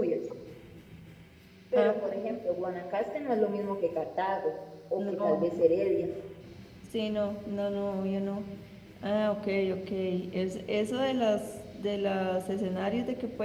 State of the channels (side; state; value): both; identical; correlation 1.00